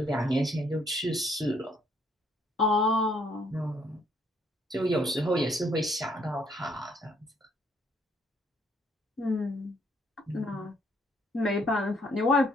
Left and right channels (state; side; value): normal; both; correlation 0.67